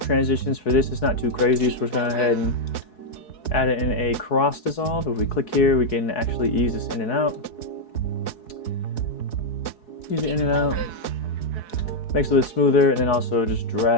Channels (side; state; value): right; late; 4.7 ms